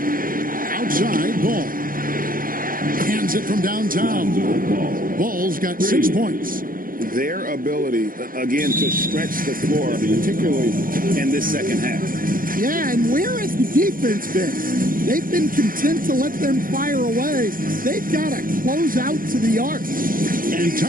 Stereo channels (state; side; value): late; left; 0.41 ms